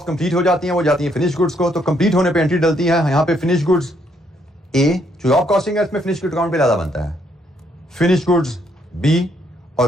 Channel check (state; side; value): normal; both; correlation 0.72